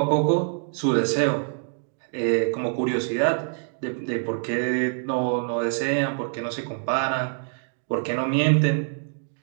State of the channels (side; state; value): left; silent; 62 dB below the other